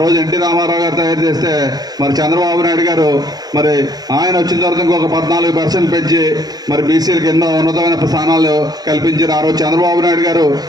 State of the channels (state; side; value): late; left; 0.19 ms